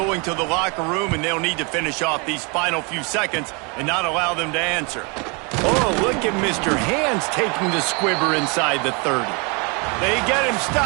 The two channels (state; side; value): quieter; left; 31.9 dB